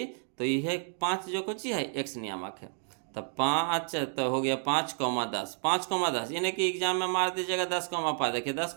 तो यह 5 जो कुछ है एक्स नियामक है। तो 5 तो हो गया 5,10, 5,10 यानी कि एग्जाम में मार दीजिएगा 10,5। देखिए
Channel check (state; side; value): silent; left; 55 dB below the other